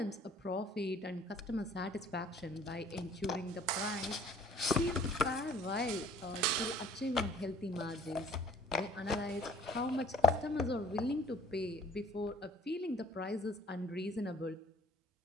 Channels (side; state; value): both; normal; correlation 0.54